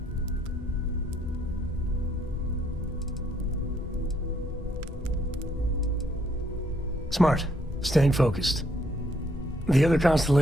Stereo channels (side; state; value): both; normal; correlation 0.70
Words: Smart. Staying focused. The other